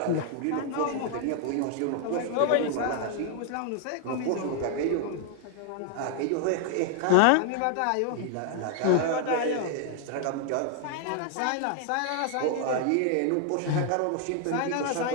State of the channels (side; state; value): both; different; correlation 0.00